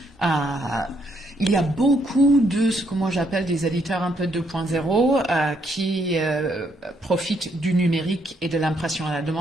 Il y a beaucoup de ce que moi j'appelle des éditeurs un peu 2.0 qui profitent du numérique et de l'impression à la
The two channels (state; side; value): normal; both; correlation 0.73